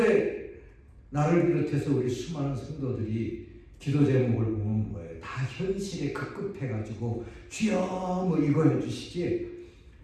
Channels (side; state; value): both; identical; correlation 1.00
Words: 나를 비롯해서 우리 수많은 성도들이 기도 제목을 보면 뭐예요? 다 현실에 급급해가지고 주여 뭐 이거 해주시지,